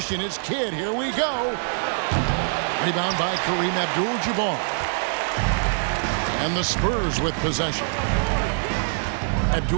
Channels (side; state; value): left; silent; digital silence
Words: it's Kidd. Here we go. Rebound by Kareem Abdul-Jabbar. And the Spurs with possession.